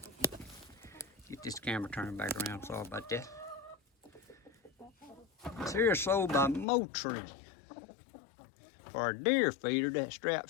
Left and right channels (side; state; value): right; drops out; at 6.7 s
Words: get this camera turned back around, sorry about that. It's here sold by Motree for a deer feeder that